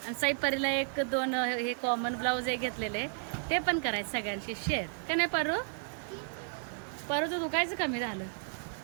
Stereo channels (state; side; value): silent; left; 56 dB below the other